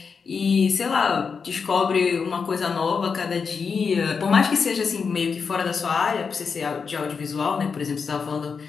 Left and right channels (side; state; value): right; quieter; 5.6 dB